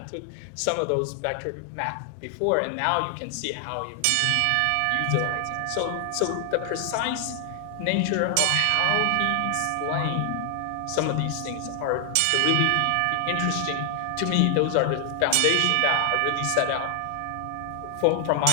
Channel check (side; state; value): both; different; correlation 0.00